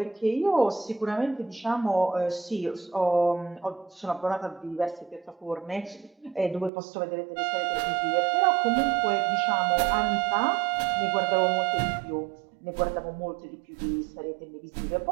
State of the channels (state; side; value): drops out; left; at 6.7 s